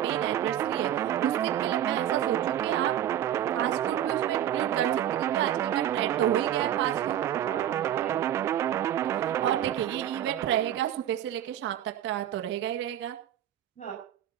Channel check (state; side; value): quieter; left; 11.1 dB